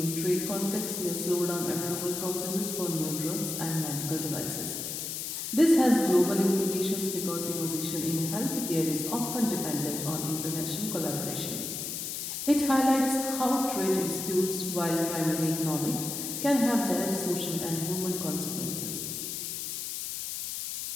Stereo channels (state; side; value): noise; left; hiss, 4 dB below the sound